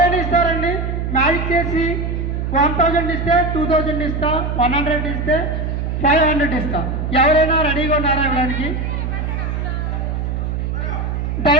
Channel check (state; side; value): noise; right; hum, 2 dB below the sound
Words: ఇస్తారండి? మ్యాజిక్ చేసి 1000 ఇస్తే 2000 ఇస్తా, 100 ఇస్తే 500 ఇస్తా. ఎవరైనా రెడీగా ఉన్నారా ఇవ్వడానికి?